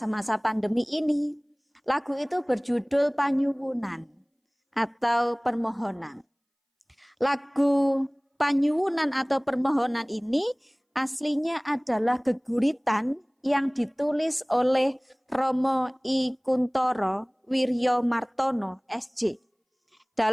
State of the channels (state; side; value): identical; both; correlation 1.00